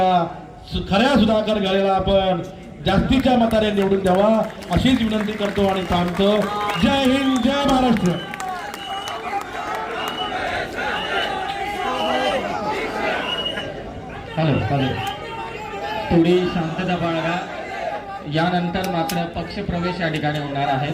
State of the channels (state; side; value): identical; both; correlation 1.00